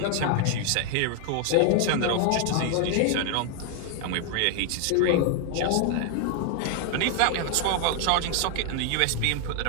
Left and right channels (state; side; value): different; both; correlation 0.00